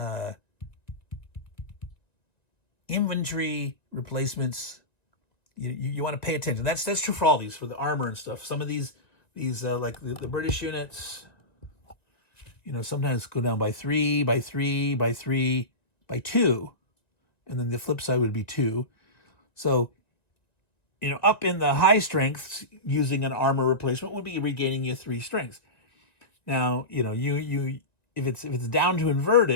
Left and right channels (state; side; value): late; right; 1.8 ms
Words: infantry replacements, you want to pay attention. That's true for all these, for the armor and stuff. Some of these like the British units, sometimes go down by 3, by 3, by 3, by 2. And then the flip side would be 2. So, up in the high strengths, using an armor replacement would be regaining you 3 strengths. Now, you if it's down to